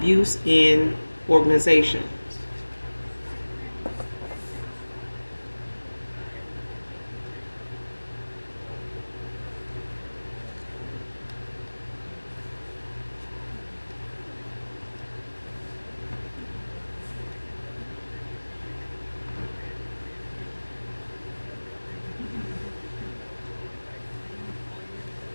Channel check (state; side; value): inverted; both; correlation -1.00